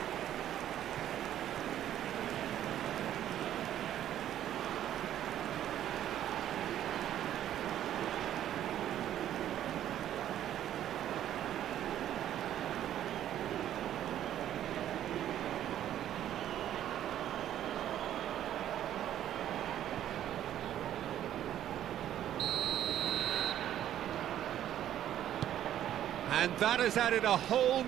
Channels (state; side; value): quieter; left; 11.4 dB